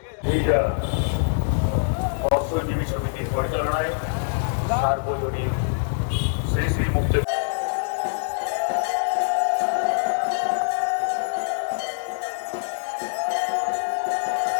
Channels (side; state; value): right; silent; digital silence